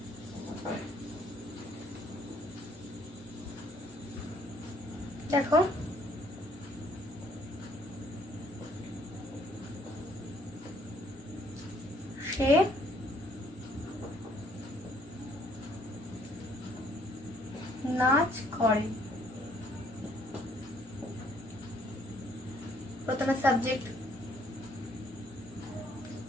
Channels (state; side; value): normal; both; correlation 0.64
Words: দেখো সে নাচ করে। প্রথমে সাবজেক্ট